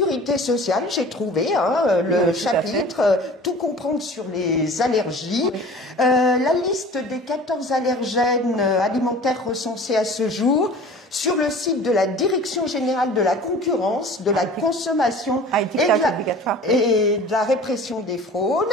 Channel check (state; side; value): normal; both; correlation 0.43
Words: sociale, j'ai trouvé le chapitre Tout comprendre sur les allergies. Oui. La liste des 14 allergènes alimentaires recensés à ce jour sur le site de la Direction générale de la concurrence, de la consommation et de la répression des fraudes.